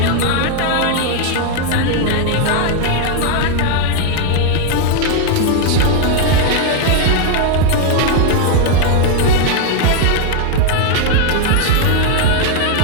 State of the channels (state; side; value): different; both; correlation 0.00